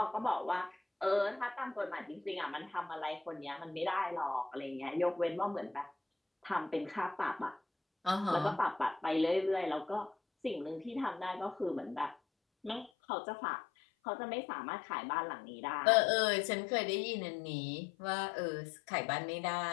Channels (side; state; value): right; drops out; at 12.9 s